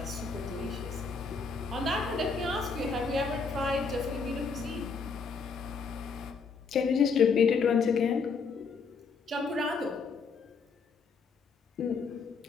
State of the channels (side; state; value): right; quieter; 4.9 dB